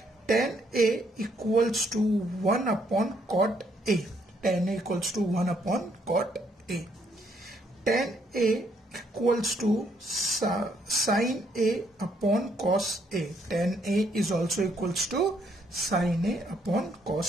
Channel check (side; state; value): both; normal; correlation 0.71